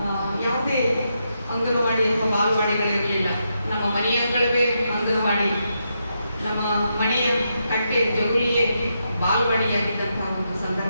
ಯಾವುದೇ ಅಂಗನವಾಡಿ ಅಥವಾ ಬಾಲವಾಡಿಗಳಿರಲಿಲ್ಲ. ನಮ್ಮ ಮನೆಯ ಅಂಗಳವೇ ಅಂಗನವಾಡಿ, ನಮ್ಮ ಮನೆಯ ಕಟ್ಟೆ ಜಗುಲಿಯೇ ಬಾಲವಾಡಿಯಾಗಿದ್ದಂತಹ ಒಂದು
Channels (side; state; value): both; inverted; correlation -0.83